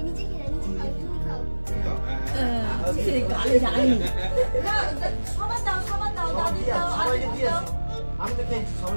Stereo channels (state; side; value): inverted; both; correlation -1.00